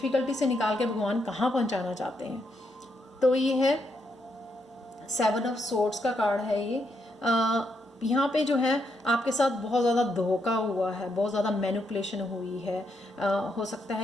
से निकाल के भगवान कहाँ पहुँचाना चाहते हैं। तो ये है 7 ऑफ सोर्ड्स का कार्ड है ये। यहाँ पे जो है आपके साथ बहुत ज़्यादा धोखा हुआ है, बहुत ज़्यादा मैनिपुलेशन हुई है। हो सकता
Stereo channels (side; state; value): both; normal; correlation 0.79